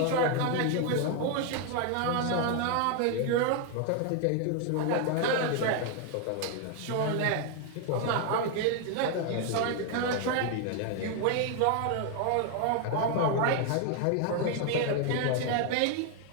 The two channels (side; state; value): both; different; correlation 0.01